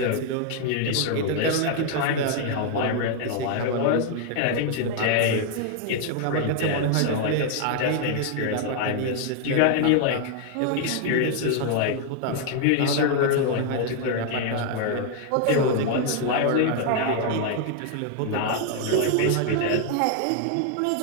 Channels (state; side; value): different; both; correlation 0.00